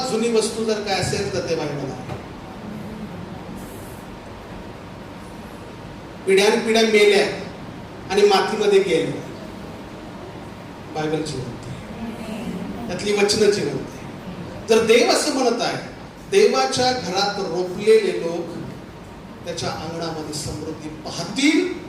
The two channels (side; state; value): both; identical; correlation 1.00